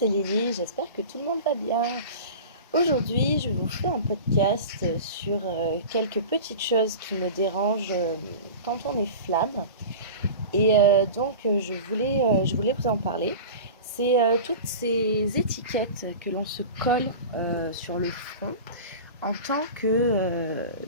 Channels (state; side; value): inverted; both; correlation -0.33